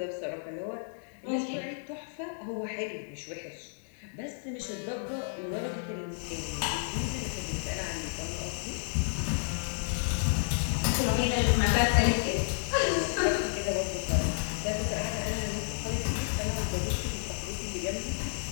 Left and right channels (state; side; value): silent; right; 57 dB below the other